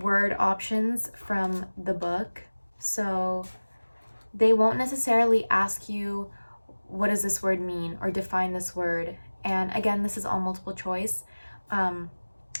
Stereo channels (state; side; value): inverted; both; correlation -1.00